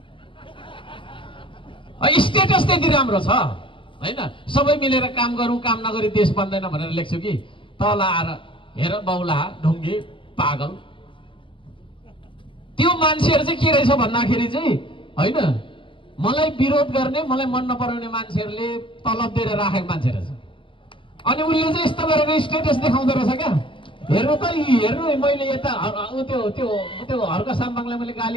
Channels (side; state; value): right; late; 0.25 ms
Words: Status त्यति राम्रो छ हैन, सबै मिलेर काम गरौँ, काम नगरी देश बन्दैन भनेर लेख्छु कि तल आएर हेर बौला ढुङ्गे पागल। त्यो मान्छेहरू चाहिँ के रहेछ भन्दाखेरि चाहिँ हैन, मलाई विरोध गर्ने, मलाई मन नपराउने मान्छेहरूले तलब दिएर राखेको मान्छे रहेछ। अनि उसले चाहिँ यस्तो गरेर स्टेटस देखाउँदो रहेछ क्या, हेर्नु त हेर्नु मैले यता त्यो त्यो त्यो हर्क साम्बाङलाई मैले